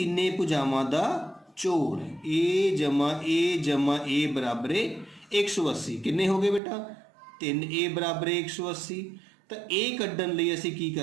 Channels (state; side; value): drops out; left; at 6.6 s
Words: ਭੁਜਾਵਾਂ ਦਾ ਜੋੜ। A ਜਮਾ A ਬਰਾਬਰ 180। ਕਿੰਨੇ ਹੋ ਗਏ ਬੇਟਾ 3A ਬਰਾਬਰ 180। ਤਾਂ A ਕੱਢਣ ਲਈ ਅਸੀਂ ਕੀ